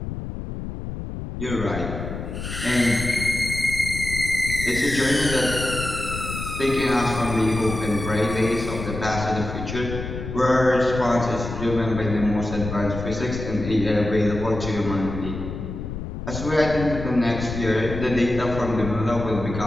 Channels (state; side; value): noise; left; rumble, 7 dB below the sound